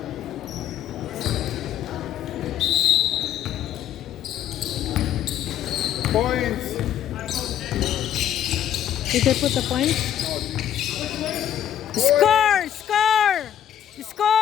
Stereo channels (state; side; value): quieter; right; 10.5 dB